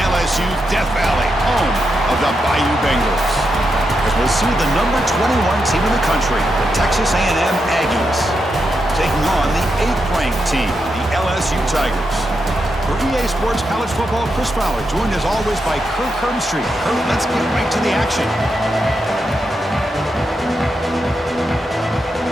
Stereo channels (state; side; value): normal; both; correlation 0.85